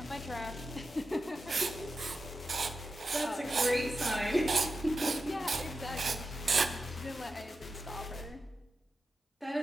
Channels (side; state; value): both; normal; correlation 0.90